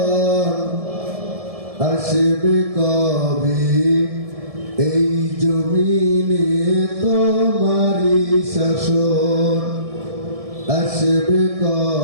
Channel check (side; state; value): left; late; 1.6 ms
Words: আসবে কবে এই জমিনে তোমারি শাসন, আসবে